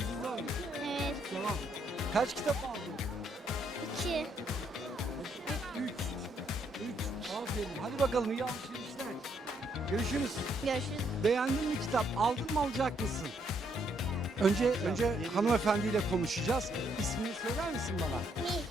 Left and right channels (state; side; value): normal; both; correlation 0.72